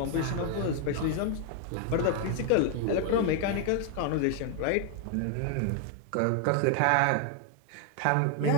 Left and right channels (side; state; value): both; different; correlation 0.01